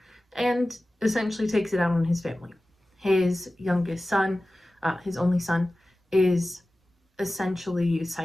and essentially takes it out on his family. His youngest son, his only son, is essentially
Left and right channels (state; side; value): normal; both; correlation 0.96